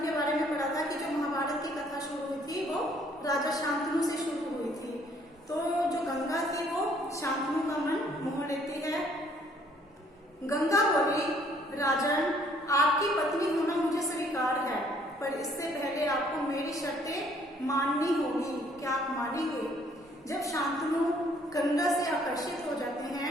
के बारे में पढ़ा था कि जो महाभारत की कथा शुरू हुई थी वो राजा शांतनु से शुरू हुई थी। तो जो गंगा थी वो शांतनु का मन मोह लेती है। गंगा बोली, राजन, आपकी पत्नी होना मुझे स्वीकार है, पर इससे पहले आपको मेरी शर्तें माननी होगी। क्या आप मानेंगे? जब शांतनु गंगा से आकर्षित हो जाते हैं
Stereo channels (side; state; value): both; normal; correlation 0.62